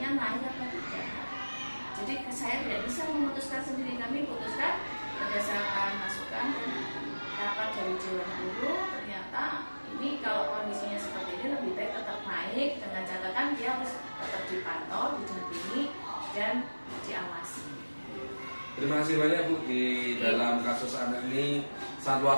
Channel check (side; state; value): both; inverted; correlation -1.00